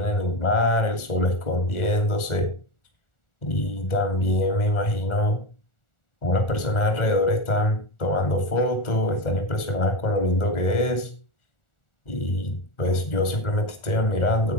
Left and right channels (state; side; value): late; right; 1.4 ms